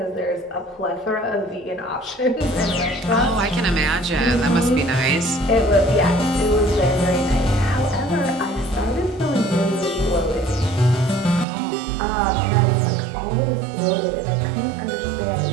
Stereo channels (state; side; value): drops out; left; at 11.5 s